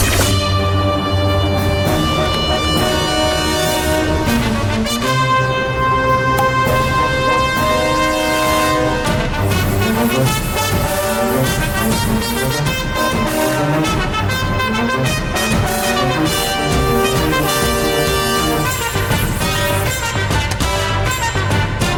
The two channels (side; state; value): both; identical; correlation 1.00